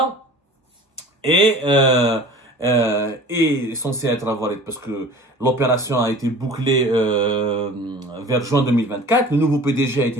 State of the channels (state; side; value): normal; both; correlation 0.43